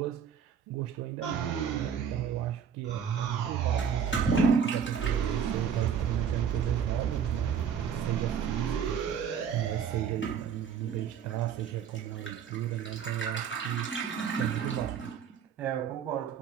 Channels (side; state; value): left; quieter; 7.7 dB